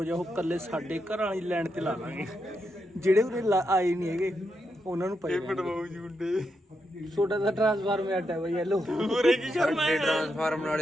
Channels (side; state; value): both; normal; correlation 0.83